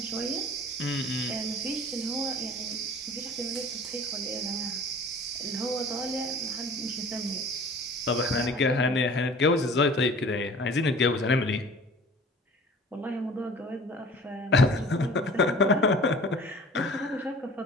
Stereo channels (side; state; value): both; normal; correlation 0.45